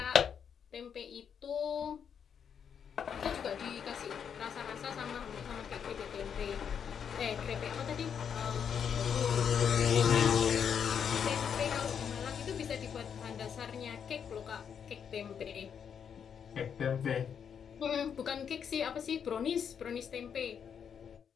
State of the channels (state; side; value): quieter; right; 7.6 dB